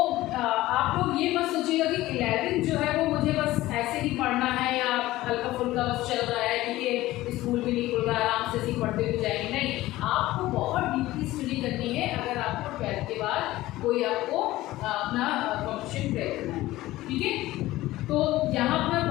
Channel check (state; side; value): quieter; right; 16.9 dB